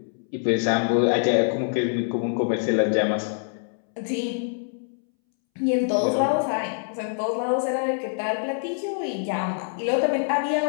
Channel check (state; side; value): silent; right; 62 dB below the other